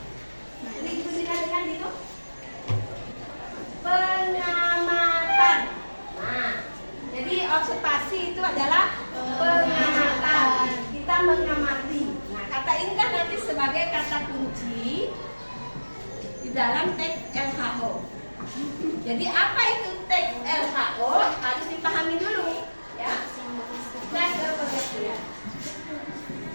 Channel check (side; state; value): both; inverted; correlation -1.00